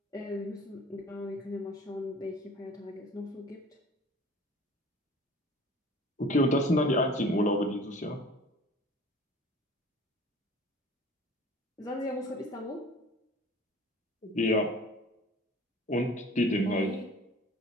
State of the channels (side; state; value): both; normal; correlation 0.46